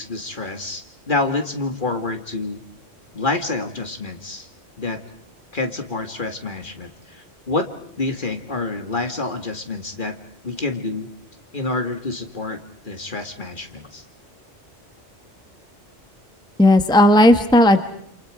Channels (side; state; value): both; normal; correlation 0.48